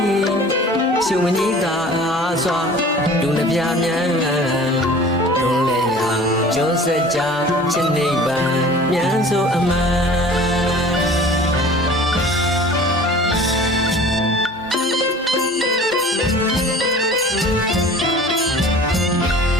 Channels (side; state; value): both; normal; correlation 0.44